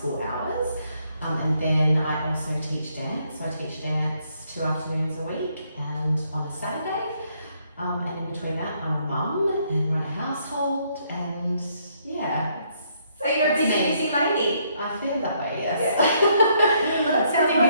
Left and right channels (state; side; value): inverted; both; correlation -0.71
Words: hours. And then I also teach dance. So I teach dance 2 afternoons a week and on a Saturday. And in between that, I'm a mum and run a household. And yeah. So you're a busy lady. I feel that way, yes. Well, that sounds